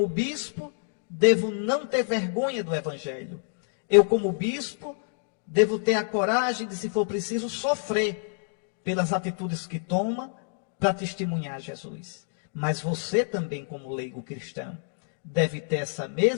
bispo, devo não ter vergonha do Evangelho. Eu, como bispo, devo ter a coragem de, se for preciso, sofrer pelas atitudes que toma para testemunhar Jesus. Mas você também, como leigo cristão, deve ter essa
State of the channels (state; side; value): silent; right; digital silence